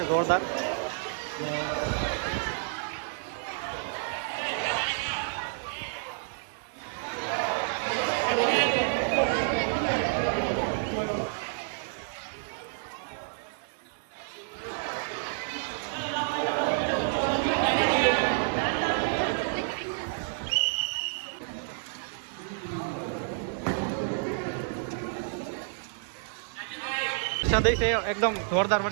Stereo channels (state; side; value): silent; left; 58 dB below the other